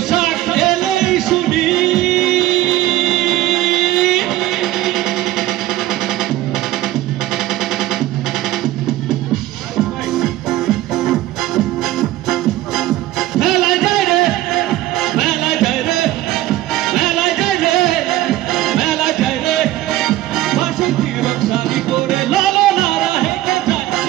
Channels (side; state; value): left; quieter; 15.2 dB